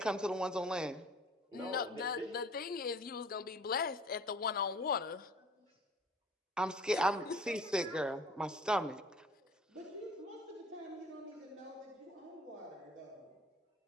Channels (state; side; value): normal; both; correlation 0.48